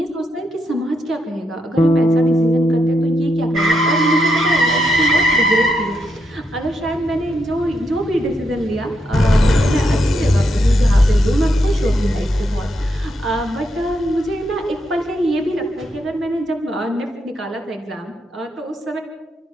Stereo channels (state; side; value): normal; both; correlation 0.81